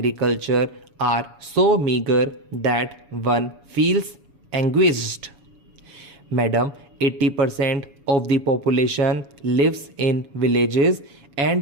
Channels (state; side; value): late; left; 7.1 ms